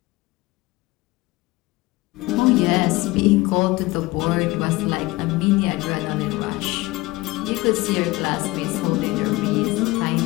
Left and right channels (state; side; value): quieter; right; 20.6 dB